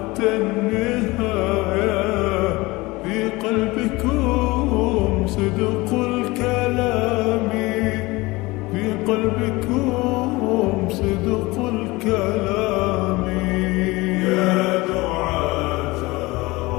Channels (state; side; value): quieter; right; 21.9 dB